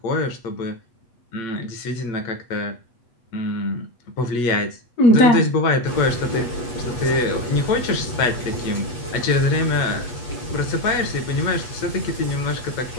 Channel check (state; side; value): late; right; 8.3 ms